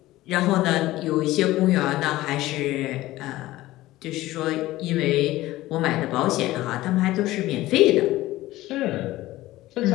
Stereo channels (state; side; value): quieter; right; 16.9 dB